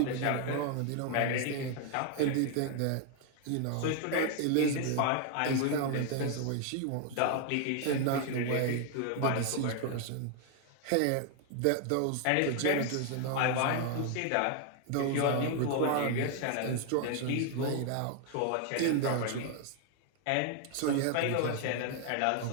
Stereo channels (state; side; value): different; both; correlation 0.00